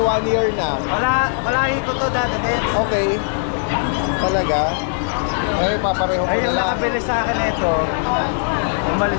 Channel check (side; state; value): right; silent; digital silence